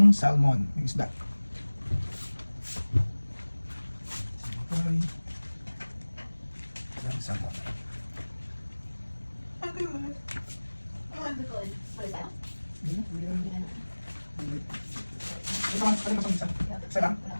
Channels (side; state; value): both; inverted; correlation -1.00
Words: salmon. Yung isda. Okay. Yung salmon. Okay. Ito ang isa. Isa lang.